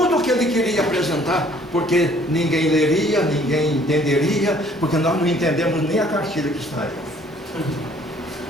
o que ele queria apresentar, porque ninguém leria, ninguém entenderia, porque nós não entendemos nem a cartilha que está aí.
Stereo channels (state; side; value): normal; both; correlation 0.59